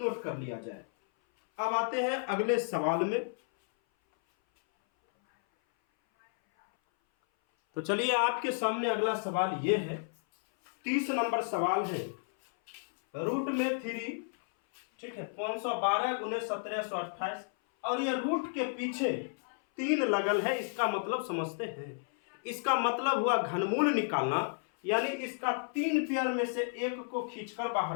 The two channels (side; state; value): right; silent; 56 dB below the other